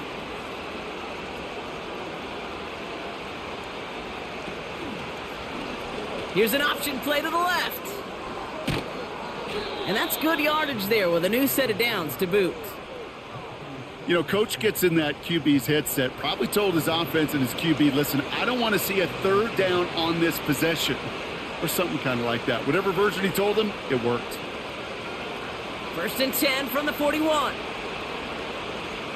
Here's an option play to the left. And that's good yardage there with a new set of downs to boot. You know, coach gets in that QB's headset, probably told his offense and his QB, listen, I don't want to see a 3rd down on this possession. Or something kind of like that. Whatever version he told him, it worked. 1st and 10 from the 41.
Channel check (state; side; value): identical; both; correlation 1.00